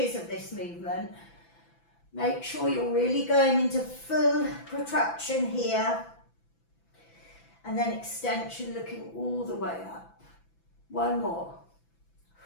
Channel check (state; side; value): late; right; 5.9 ms